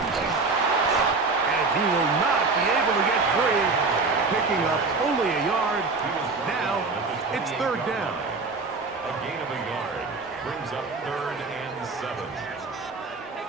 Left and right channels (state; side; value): quieter; left; 4.0 dB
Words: And he will not be able to get free. Picking up only a yard. Now it's 3rd down. A gain of a yard brings up 3rd and 7.